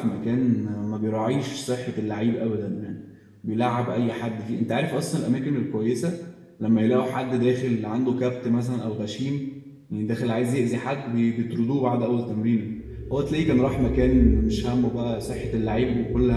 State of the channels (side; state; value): both; identical; correlation 1.00